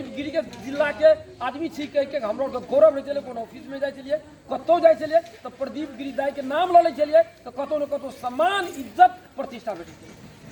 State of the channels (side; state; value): both; identical; correlation 1.00